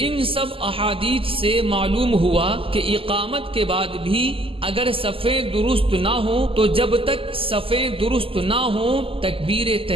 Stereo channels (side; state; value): left; late; 0.26 ms